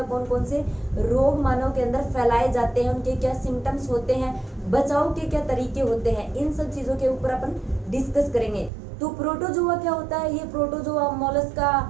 कौन कौन से रोग मानव के अंदर फैलाए जाते हैं, उनके क्या सिम्टम्स होते हैं, बचाव के क्या तरीके होते हैं, इन सब चीजों के ऊपर अपन डिस्कस करेंगे। तो प्रोटोजोआ क्या होता है, ये प्रोटोजोआ, मोलस्का,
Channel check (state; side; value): drops out; left; at 8.7 s